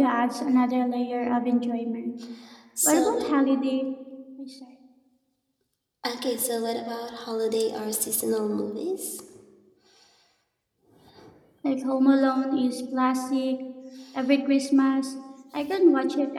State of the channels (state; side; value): identical; both; correlation 1.00